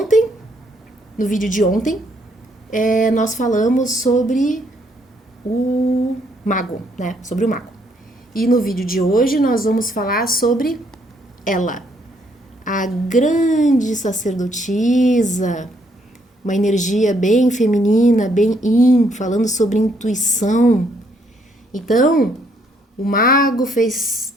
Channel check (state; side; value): normal; both; correlation 0.70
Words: no vídeo de ontem, nós falamos sobre o mago, né? Sobre o mago. E no vídeo de hoje nós vamos falar sobre ela, a grande sacerdotisa, uma energia bem feminina, bem yin, falando sobre intuição. Então, o mago fez